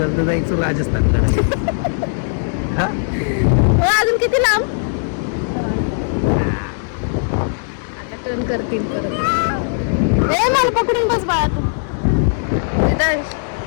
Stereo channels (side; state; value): right; silent; digital silence